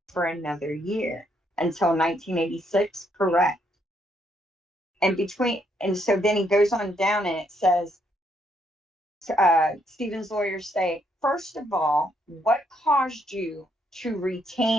for another year until 1986, correct. And so then he goes on down and it says, Stephen's lawyers say, first of all, what caused you to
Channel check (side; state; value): both; normal; correlation 0.73